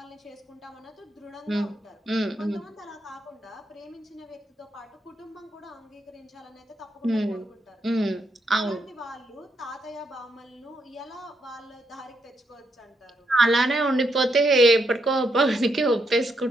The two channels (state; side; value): normal; both; correlation 0.78